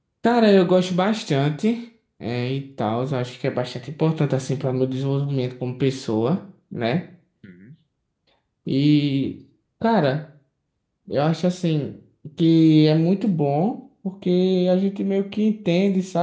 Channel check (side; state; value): both; identical; correlation 1.00